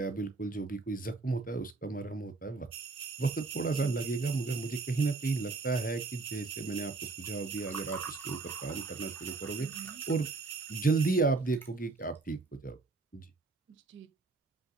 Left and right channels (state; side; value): quieter; left; 3.7 dB